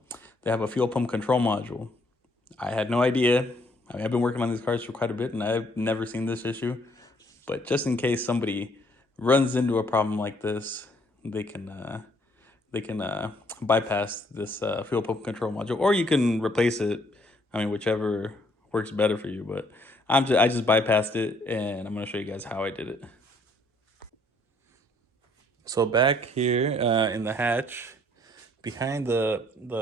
have a fuel pump control module. I had no idea. I mean, I've been working on these cars for quite a bit and I've never seen this issue. But just in case somebody runs into a problem like this, they can bypass this fuel pump control module, or you can replace it. I mean, whichever works better for you. But I just bypassed it, and I'm gonna show you guys how I did it. So back here in the hatch, behind the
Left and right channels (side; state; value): both; normal; correlation 0.65